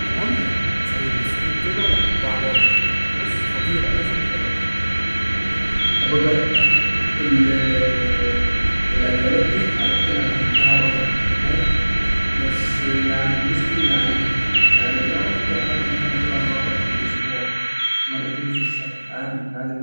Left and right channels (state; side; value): inverted; both; correlation -1.00